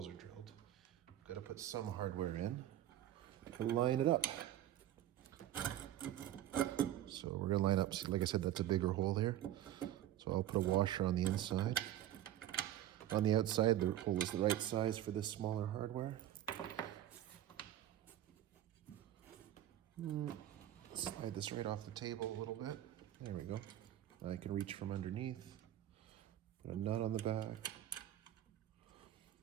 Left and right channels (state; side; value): quieter; left; 12.4 dB